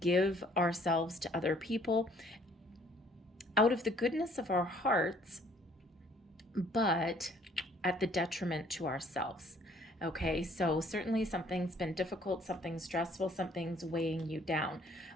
ourselves to other people out of the goodness of our hearts, but at the detriment to ourselves. Okay, so certainly something's been difficult, something's stressful, something's weighing you down.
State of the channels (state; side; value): normal; both; correlation 0.60